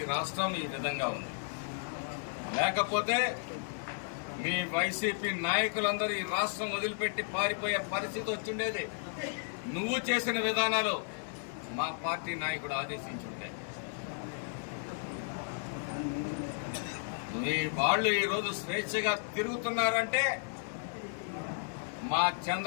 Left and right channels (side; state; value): right; silent; digital silence